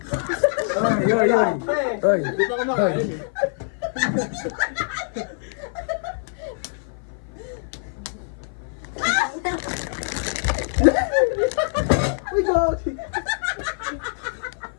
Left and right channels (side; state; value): right; silent; 55 dB below the other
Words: Ay, ay, ay. Ay. Di pa kumakain eh. Uy, gagi.